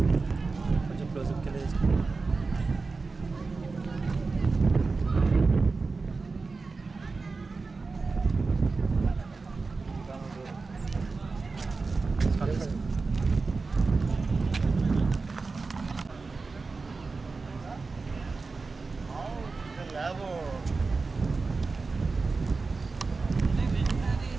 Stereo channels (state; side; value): quieter; left; 4.1 dB